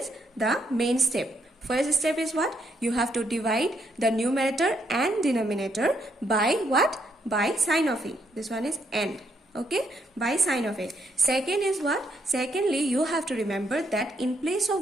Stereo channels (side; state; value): both; normal; correlation 0.75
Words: the main step. First step is what? You have to divide the numerator and denominator by what? By sign of A. This one is AND. Okay, by sign of A. Second is what? Secondly, you have to remember that in place